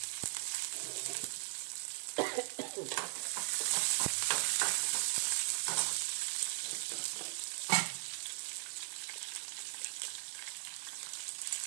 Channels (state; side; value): silent; left; 52 dB below the other